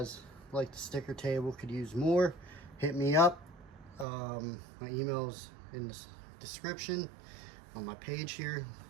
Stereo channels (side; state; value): left; drops out; at 4.0 s